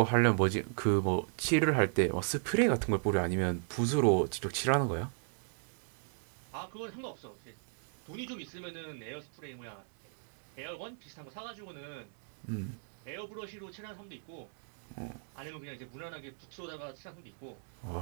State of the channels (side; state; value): left; silent; digital silence